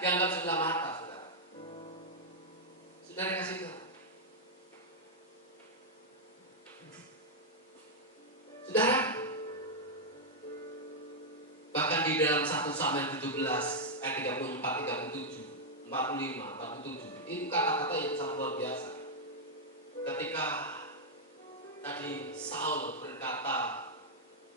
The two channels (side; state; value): both; normal; correlation -0.04